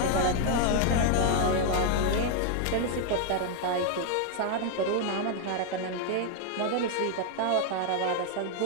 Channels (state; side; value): different; both; correlation 0.00